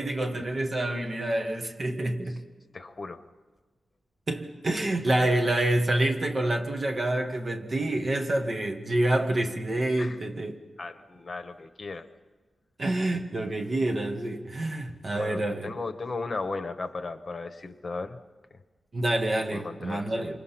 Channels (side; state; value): both; normal; correlation 0.93